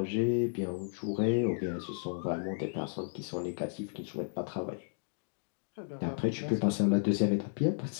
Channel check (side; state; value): right; silent; digital silence